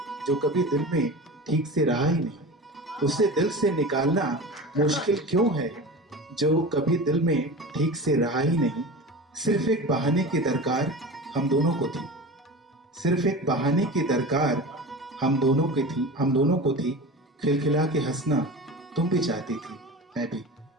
जो कभी दिल में ठीक से रहा ही नहीं। उसे दिल से निकालना मुश्किल क्यों है, जो कभी दिल में ठीक से रहा ही नहीं। सिर्फ एक बहाने की दरकार हम दोनों को थी, सिर्फ एक बहाने की दरकार हम दोनों को थी। खिलखिला के हंसना तुम भी चाहती थी, मैं भी।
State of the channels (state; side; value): normal; both; correlation 0.31